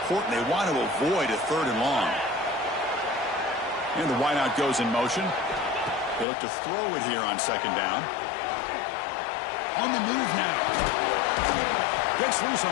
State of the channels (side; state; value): right; drops out; at 6.2 s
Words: They want to avoid a 3rd and long. And the wideout goes in motion. They look to throw it here on 2nd down. On the move now. Gets loose